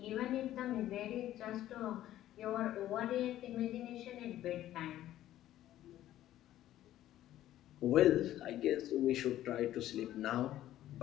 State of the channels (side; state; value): right; quieter; 13.3 dB